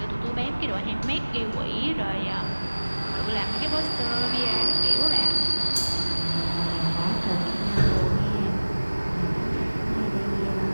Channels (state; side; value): inverted; both; correlation -1.00